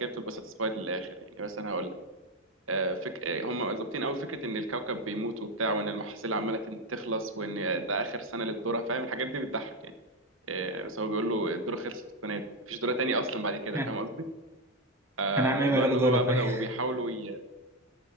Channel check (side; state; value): both; normal; correlation 0.11